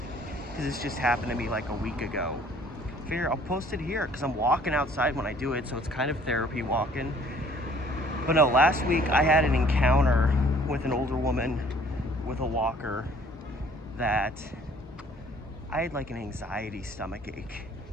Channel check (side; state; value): both; normal; correlation 0.56